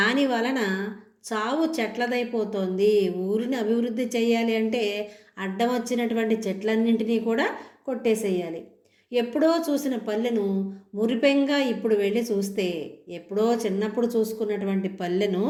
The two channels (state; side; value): identical; both; correlation 1.00